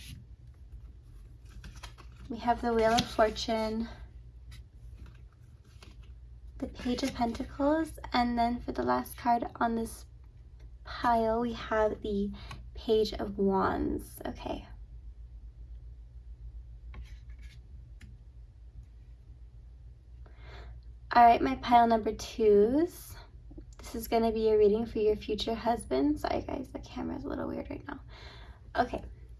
We have the Wheel of Fortune, the Page of Pentacles, and then for the last card on this pile, we have the Page of Wands. Okay. All right, my pile number 2s. This is going to be a reading for your future husband. Sorry guys, the camera's a little weird right now. Okay.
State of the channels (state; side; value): identical; both; correlation 1.00